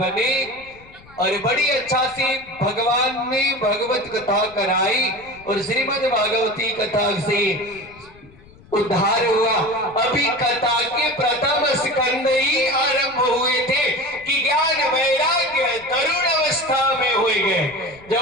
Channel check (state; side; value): noise; left; rumble, 24 dB below the sound